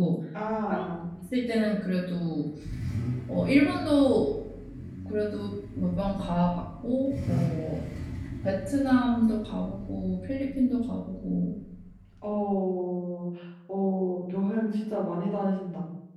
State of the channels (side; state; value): both; identical; correlation 1.00